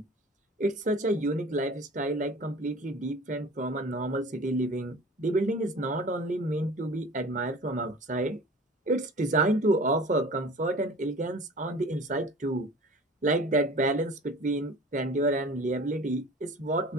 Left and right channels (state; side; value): normal; both; correlation 0.43